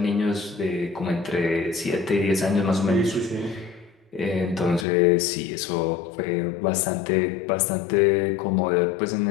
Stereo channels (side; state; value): right; drops out; at 4.9 s